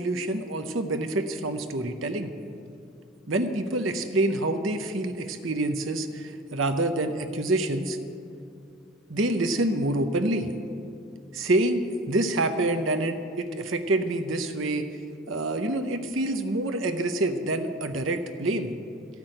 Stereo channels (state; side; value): normal; both; correlation 0.35